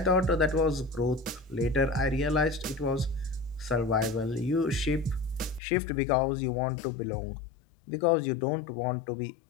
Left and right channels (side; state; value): right; drops out; at 5.6 s